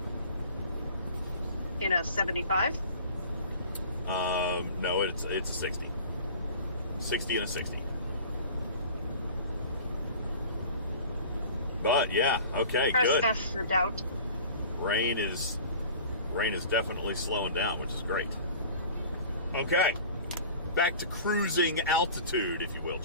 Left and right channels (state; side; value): inverted; both; correlation -0.43